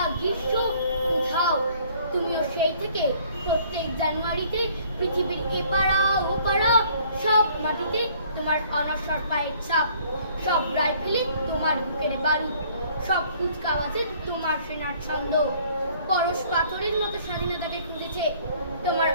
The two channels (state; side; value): inverted; both; correlation -0.58